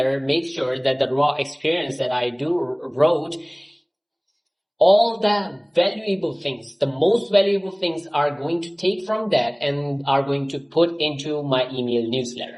makes sure that the raw experience that I wrote, all the valuable things, the most valuable things are going to take from that and are going to put into my email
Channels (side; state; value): both; identical; correlation 1.00